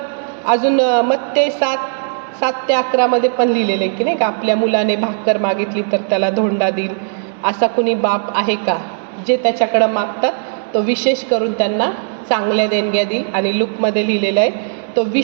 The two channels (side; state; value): left; silent; 68 dB below the other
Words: अजून मत्ते 7:7-11 पण लिहिलेलं आहे की नाही का, आपल्या मुलाने भाकर मागितली तर त्याला धोंडा देईल. असा कुणी बाप आहे का जे त्याच्याकडं मागतात तो विशेष करून त्यांना चांगल्या देणग्या देईल. आणि लूकमध्ये लिहिलेलं आहे, तो